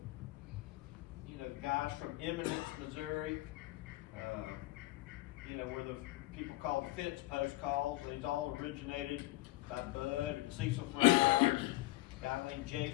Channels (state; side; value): quieter; right; 18.2 dB